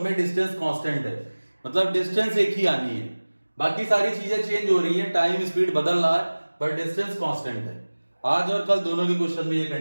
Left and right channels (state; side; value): inverted; both; correlation -1.00